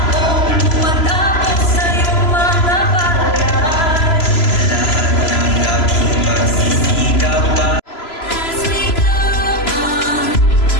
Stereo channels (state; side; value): late; right; 3.0 ms